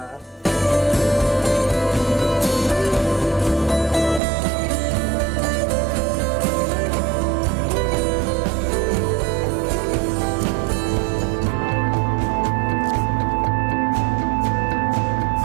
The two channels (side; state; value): left; drops out; at 4.2 s